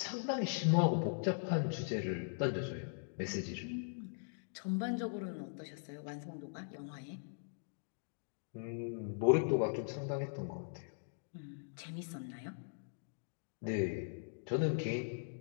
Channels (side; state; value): right; silent; digital silence